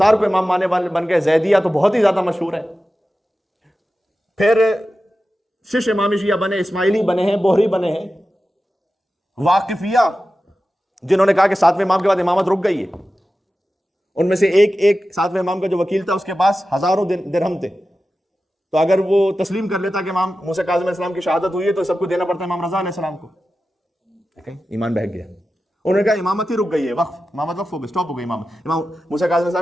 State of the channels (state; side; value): normal; both; correlation 0.93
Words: کو امام ماننے والے بن گئے. زیدیہ تو بہت ہی زیادہ مشہور ہے. پھر شش امامی شیعہ بنے، اسماعیلی بنے ہیں، بوہری بنے ہیں، واقفیہ جنہوں نے کہا کہ 7ویں امام کے بعد امامت رک گئی ہے. ان میں سے ایک 7ویں امام کا جو وکیل تھا اس کے پاس ہزاروں درہم تھے، تو اگر وہ تسلیم کر لیتا کہ امام موسیٰ کاظم علیہ السلام کی شہادت ہوئی ہے تو سب کو دینا پڑتا ہے امام رضا علیہ السلام کو. ایمان بہک گیا. انہوں نے کہا امامت ہی رک گئی ہے، وقف، امامت وقف ہو گئی، سٹاپ ہو گئی. امام موسیٰ کاظم علیہ